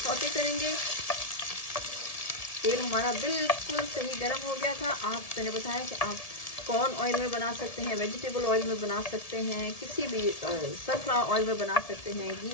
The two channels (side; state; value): right; late; 1.7 ms